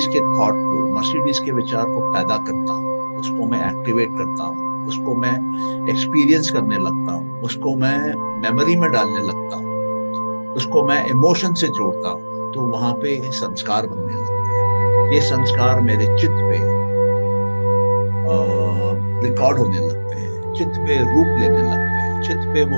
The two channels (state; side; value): inverted; both; correlation -1.00